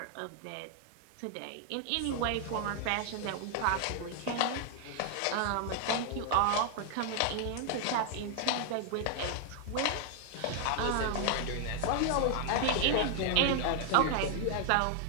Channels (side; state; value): both; different; correlation 0.00